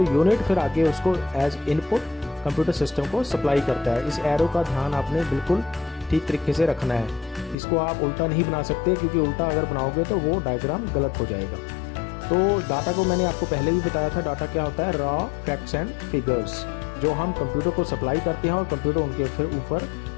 यूनिट फिर आगे उसको एज इनपुट कंप्यूटर सिस्टम को सप्लाई करता है। इस एरो का ध्यान आपने बिल्कुल ठीक तरीके से रखना है। इसको आप उल्टा नहीं बना सकते, क्योंकि उल्टा अगर बनाओगे तो वो डायग्राम गलत हो जाएगा। तो डाटा को मैंने आपको पहले भी बताया था, डाटा क्या होता है? रॉ फैक्ट्स एंड फिगर्स, जो हम कंप्यूटर को सप्लाई करते हैं और कंप्यूटर उनके फिर ऊपर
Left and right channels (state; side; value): drops out; right; at 7.6 s